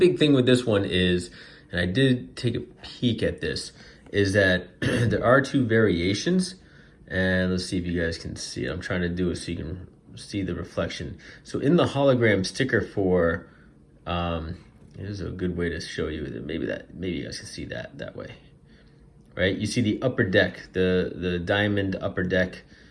thing with this one is, and I did take a peek at this, is that there are 2 variations, and let's see if you guys can see it. I'm trying to do it so you can see the reflection. So in the hologram sticker for, here's a good way to show you that maybe you guys can see that way, right? You see the Upper Deck, the diamond Upper Deck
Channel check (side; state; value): both; identical; correlation 1.00